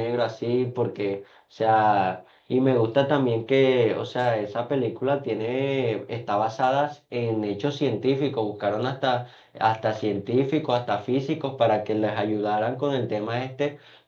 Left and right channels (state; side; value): identical; both; correlation 1.00